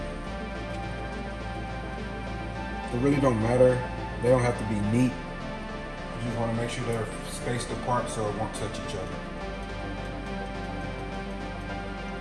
It really don't matter. They don't have to be neat. You just want to make sure they're spaced apart so it won't touch each other.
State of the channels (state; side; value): identical; both; correlation 1.00